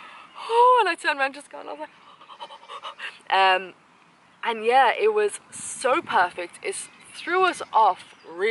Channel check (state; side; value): identical; both; correlation 1.00